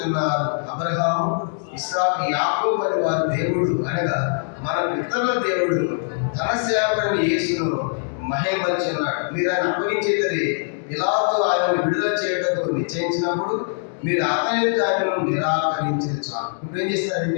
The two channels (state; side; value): silent; right; digital silence